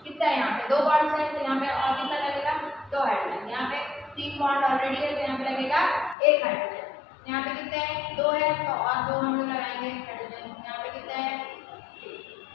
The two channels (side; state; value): right; drops out; at 6.2 s